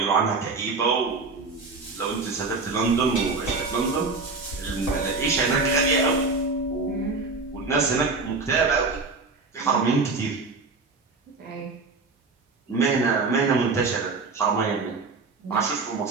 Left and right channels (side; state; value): left; quieter; 4.0 dB